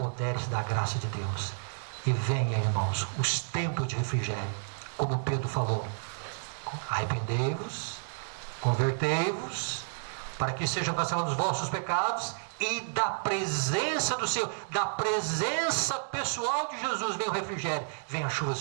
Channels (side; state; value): left; silent; digital silence